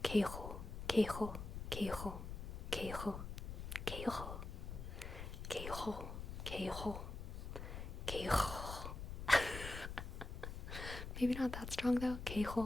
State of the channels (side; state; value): left; noise; rumble, 7 dB below the sound